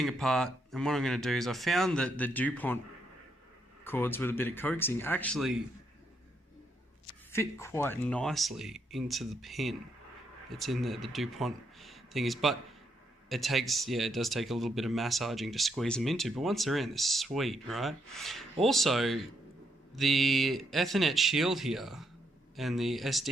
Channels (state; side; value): normal; both; correlation 0.77